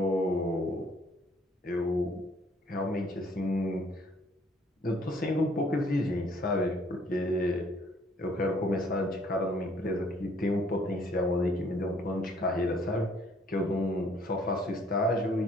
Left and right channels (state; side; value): normal; both; correlation 0.61